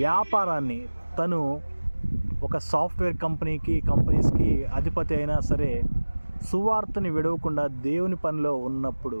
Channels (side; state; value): both; inverted; correlation -1.00